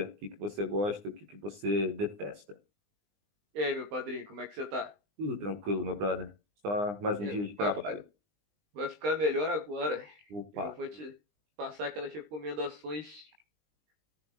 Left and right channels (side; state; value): left; late; 20 ms